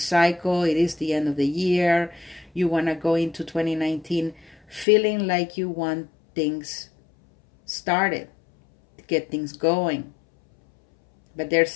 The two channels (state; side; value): drops out; right; at 4.9 s